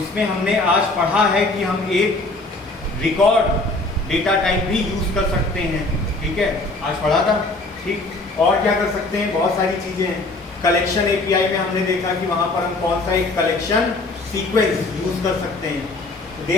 हमने आज पढ़ा है कि हम एक रिकॉर्ड डेटा टाइप भी यूज कर सकते हैं, ठीक है, आज पढ़ा था, ठीक। और क्या कर सकते हैं, बहुत सारी चीजें हैं। कलेक्शन एपीआई में हमने देखा कि वहां पर हम कौन सा एक कलेक्शन सीक्वेंस यूज कर सकते हैं।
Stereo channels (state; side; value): quieter; right; 3.0 dB